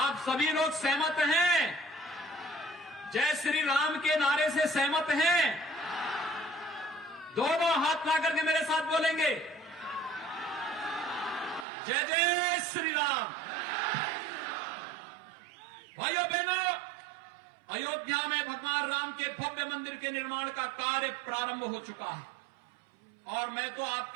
सभी लोग सहमत हैं? जय श्री राम के नारे से सहमत हैं? दोनों हाथ ला करके मेरे साथ बोलेंगे जय जय श्री राम। भाइयों बहनों, अयोध्या में भगवान राम के भव्य मंदिर के निर्माण का कार्य प्रारंभ हो चुका है और मैं तो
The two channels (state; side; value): drops out; left; at 11.7 s